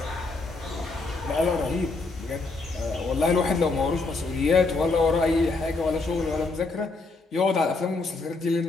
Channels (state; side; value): quieter; right; 3.6 dB